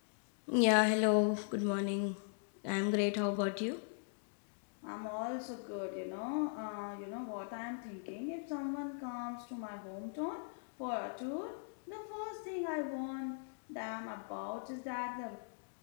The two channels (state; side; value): silent; right; digital silence